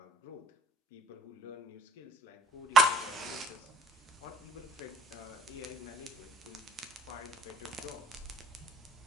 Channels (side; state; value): both; normal; correlation 0.55